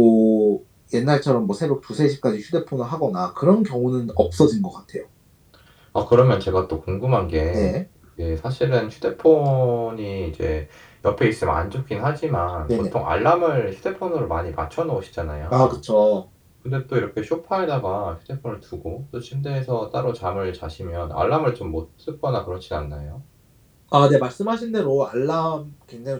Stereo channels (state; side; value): identical; both; correlation 1.00